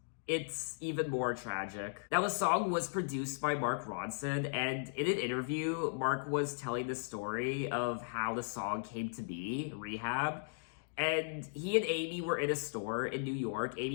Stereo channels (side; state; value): right; silent; digital silence